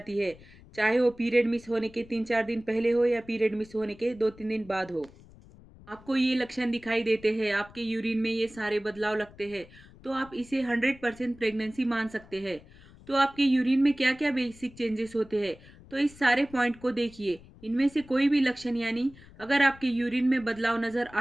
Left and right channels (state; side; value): noise; left; rumble, 22 dB below the sound